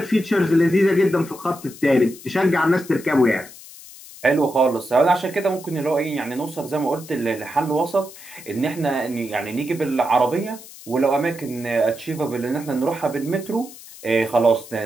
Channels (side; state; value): left; noise; hiss, 18 dB below the sound